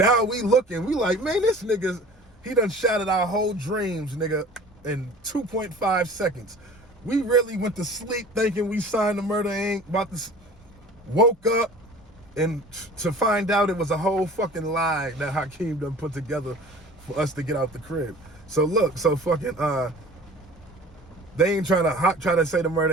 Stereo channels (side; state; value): both; normal; correlation 0.44